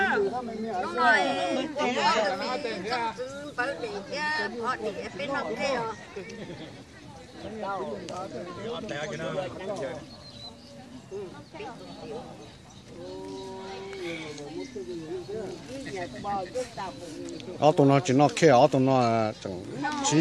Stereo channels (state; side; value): identical; both; correlation 1.00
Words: ở tụi nó chỉ nó kia ở tụi nó chẳng